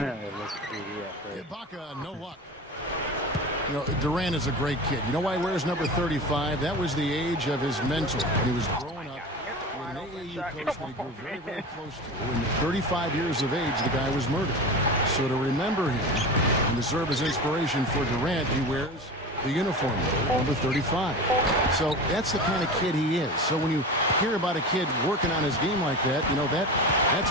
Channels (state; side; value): normal; both; correlation 0.29